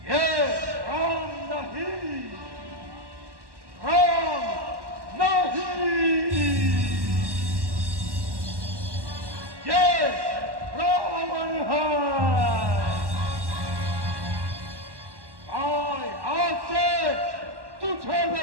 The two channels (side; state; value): left; late; 1.1 ms